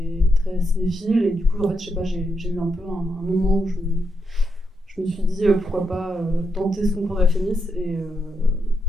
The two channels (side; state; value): both; normal; correlation 0.82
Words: très cinéphile et du coup, en fait, je sais pas, j'ai eu un peu un moment où je me suis dit pourquoi pas tenter ce concours de la Fémis et